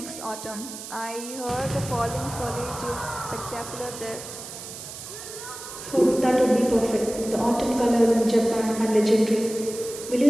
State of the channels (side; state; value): right; noise; hiss, 11 dB below the sound